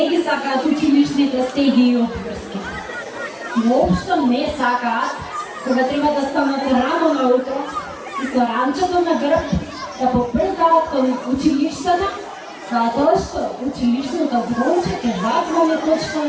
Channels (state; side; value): identical; both; correlation 1.00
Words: ги сакаат училишните стеги и обврски. Воопшто не сакаат кога треба да станат рано наутро и со ранчето на грб да попрзават кон училиштата, затоа што училишното звонче ќе зазвани точно